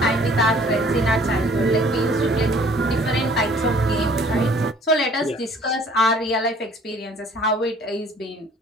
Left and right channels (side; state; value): both; normal; correlation 0.55